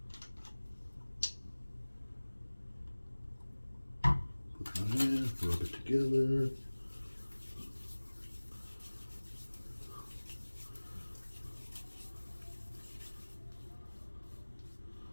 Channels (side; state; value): both; inverted; correlation -1.00